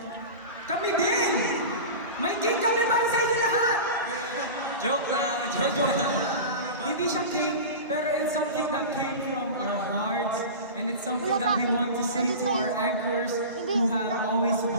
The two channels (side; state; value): both; inverted; correlation -0.30